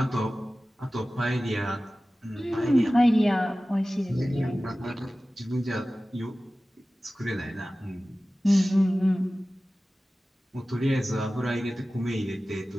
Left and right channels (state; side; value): normal; both; correlation 0.96